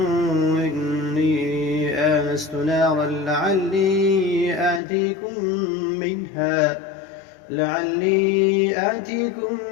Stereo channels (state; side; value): drops out; right; at 4.8 s